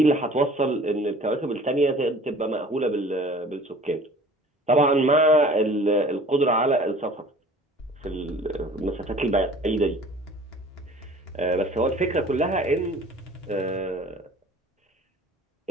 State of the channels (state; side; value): normal; both; correlation 0.47